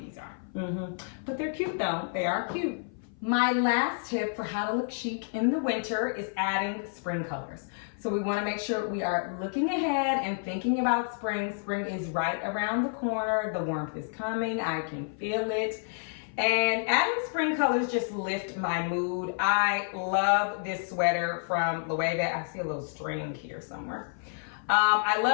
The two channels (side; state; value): right; silent; 56 dB below the other